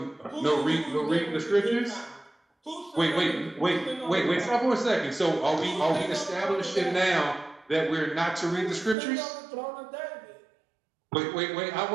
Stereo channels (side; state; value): left; drops out; at 9.0 s